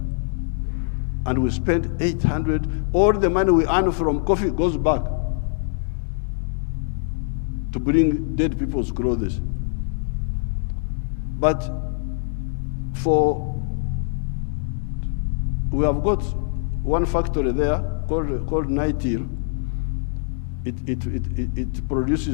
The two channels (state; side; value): silent; right; digital silence